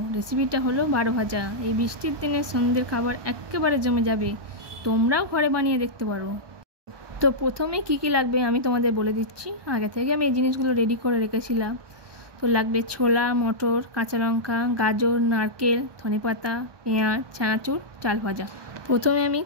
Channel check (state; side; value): late; left; 1.2 ms